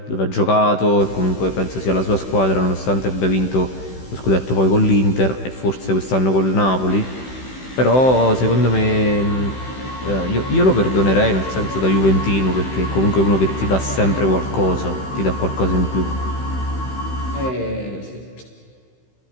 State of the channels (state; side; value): late; right; 16 ms